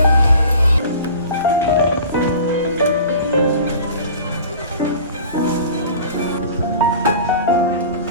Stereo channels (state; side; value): inverted; both; correlation -0.42